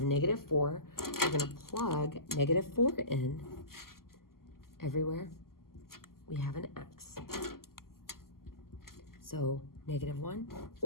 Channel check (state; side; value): late; right; 0.92 ms